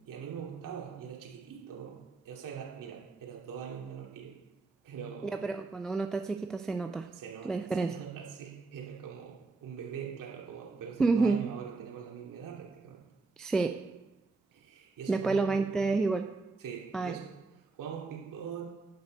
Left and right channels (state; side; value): quieter; left; 3.9 dB